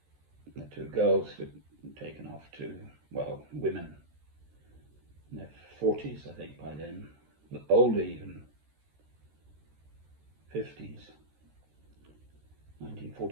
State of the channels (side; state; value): left; late; 13 ms